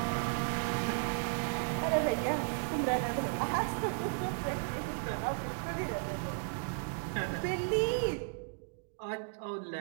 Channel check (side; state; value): left; silent; digital silence